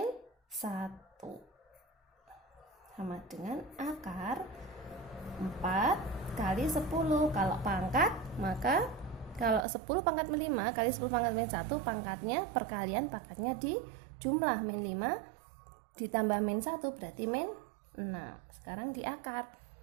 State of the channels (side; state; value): left; drops out; at 9.6 s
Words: 1 sama dengan akar 4 kali 10. Kalau pangkat maka kalau 10 pangkat min 5 kali 10 pangkat min 1 pangkatnya perkalian pangkatnya di jumlah min 5 ditambah min 1 berarti min 6. Sekarang di akar